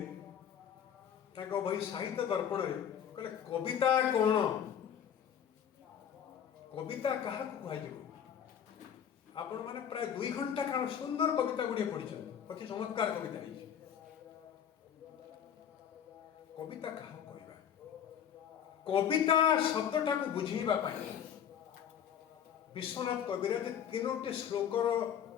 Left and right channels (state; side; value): quieter; right; 8.9 dB